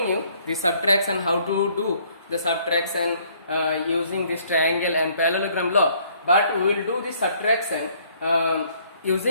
you the subtraction, how to do the subtraction using this triangle and parallelogram law. But we will do the subtraction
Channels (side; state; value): both; inverted; correlation -0.63